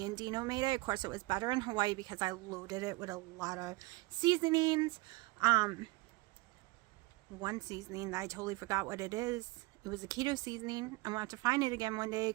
and Dino made it. Of course, it was better in Hawaii because I loaded it with a lot of seasonings. One seasoning that I totally forgot what it is. It was a keto seasoning. I'm going to have to find it again one day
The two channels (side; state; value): left; quieter; 23.0 dB